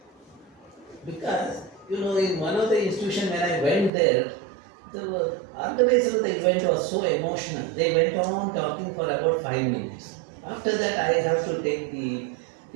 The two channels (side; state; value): left; drops out; at 3.9 s